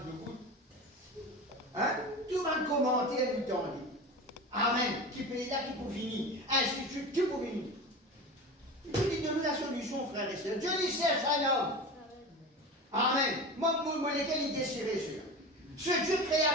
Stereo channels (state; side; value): normal; both; correlation 0.29